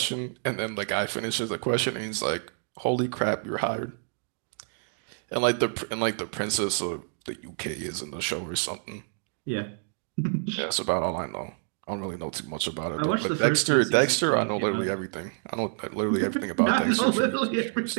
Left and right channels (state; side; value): silent; left; 59 dB below the other